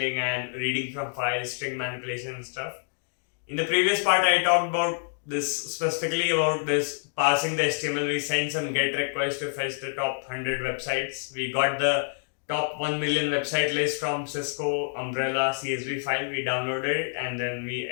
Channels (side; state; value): right; silent; digital silence